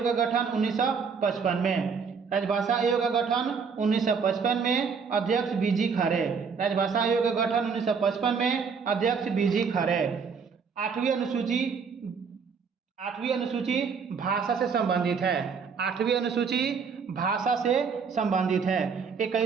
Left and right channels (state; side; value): quieter; left; 5.8 dB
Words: का गठन 1955 में। राजभाषा आयोग का गठन 1955 में, अध्यक्ष बीजी खरे। राजभाषा आयोग का गठन 1955 में, अध्यक्ष बीजी खरे। 8वीं अनुसूची भाषा से संबंधित है। 8वीं अनुसूची भाषा से संबंधित है।